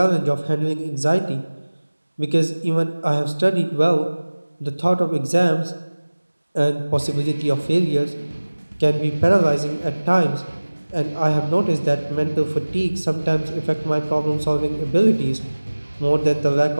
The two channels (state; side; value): inverted; both; correlation -1.00